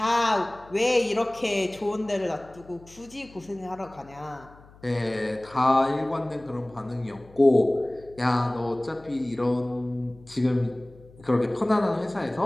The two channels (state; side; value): noise; left; hum, 24 dB below the sound